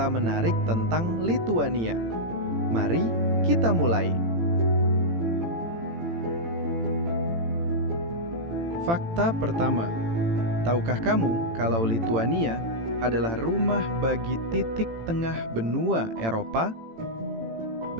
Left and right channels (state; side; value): late; left; 18 ms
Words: menarik tentang Lituania. Mari kita mulai. Fakta pertama. Tahukah kamu kalau Lituania adalah rumah bagi titik tengah benua Eropa?